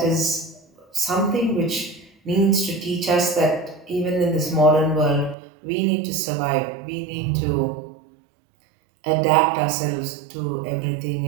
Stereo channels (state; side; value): drops out; left; at 5.4 s